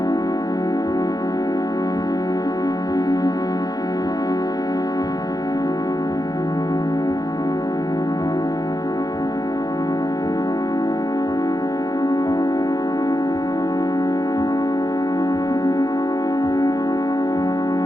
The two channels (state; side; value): late; right; 0.19 ms